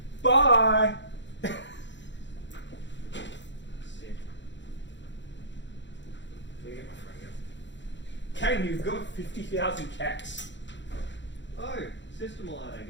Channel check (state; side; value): late; right; 0.53 ms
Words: Bye! Kayne, you've got 50,000 cats. Oh, system alert